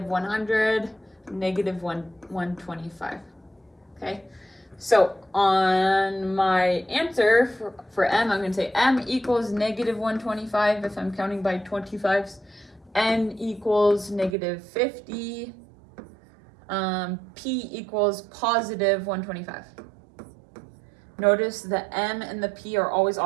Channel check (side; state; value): left; drops out; at 14.4 s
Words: 100, negative 125. Okay, so on my answer for M, I'm going to say M equals negative 125 if I'm counting by 25s. N equals negative 50. P equals positive 125. Notice the M and the P are always